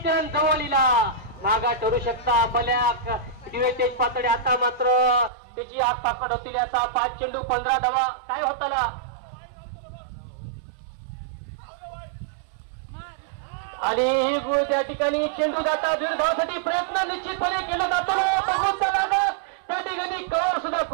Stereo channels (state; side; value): drops out; left; at 5.3 s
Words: जवळीला मागा ठरू शकता. बल्याक दिवेतेज पातळे आता मात्र त्याची आग पाकड होतील याचा. 5 चेंडू 15 धावा काय होताला. आणि ही त्या ठिकाणी चेंडू जाता दीर्घ धावासाठी प्रयत्न निश्चितपणे केला जातो. बघून लागत त्या ठिकाणी कळर सुद्धा